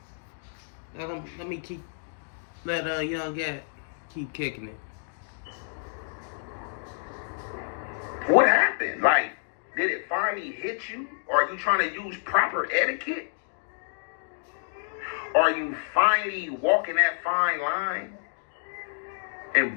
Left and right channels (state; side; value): silent; right; digital silence